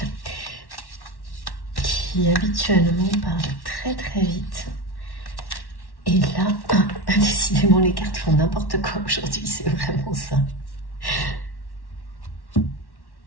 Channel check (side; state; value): right; late; 1.1 ms